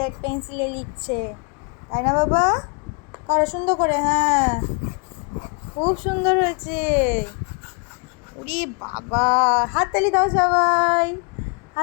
পেন্সিলে লিখছে, তাই না বাবা? করো সুন্দর করে। হ্যাঁ খুব সুন্দর হয়েছে। উরি বাবা, হাততালি দাও সবাই।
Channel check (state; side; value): quieter; right; 35.9 dB